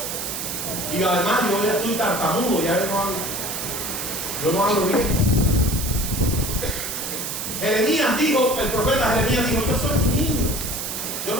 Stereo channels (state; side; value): noise; right; hiss, 4 dB below the sound